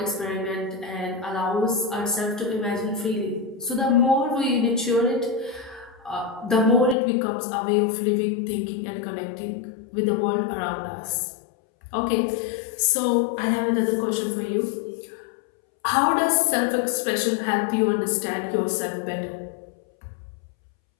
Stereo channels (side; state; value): right; drops out; at 7.0 s